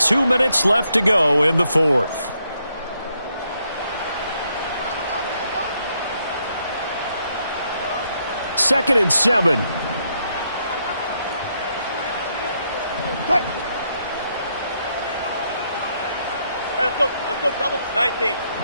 minutes left to go in the fourth. Second and 7. Hey, let's go double. 19.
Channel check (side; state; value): both; inverted; correlation -0.76